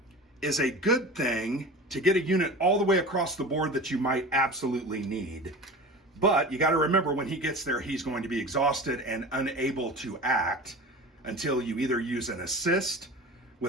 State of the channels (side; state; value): both; normal; correlation 0.34